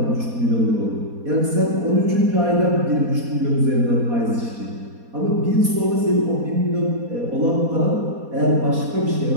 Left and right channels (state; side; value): late; left; 4.2 ms